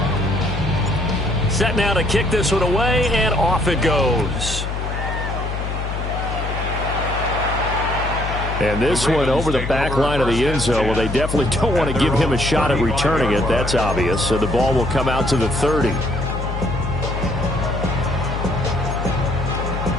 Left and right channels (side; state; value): left; noise; hum, 4 dB below the sound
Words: Set now to kick this one away, and off it goes. And this one over the back line of the end zone. Well, they definitely don't want to give him a shot at returning it. That's obvious. So the ball will come out to the 30.